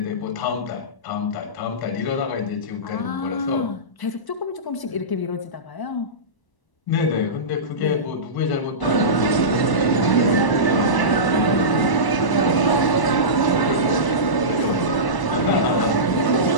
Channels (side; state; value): right; late; 1.0 ms